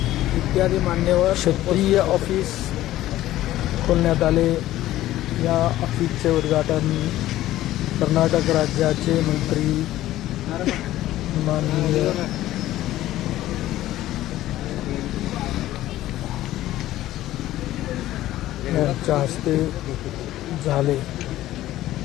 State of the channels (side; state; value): right; quieter; 14.7 dB